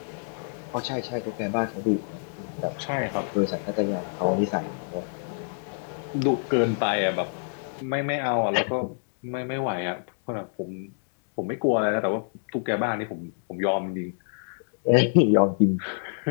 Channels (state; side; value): silent; right; digital silence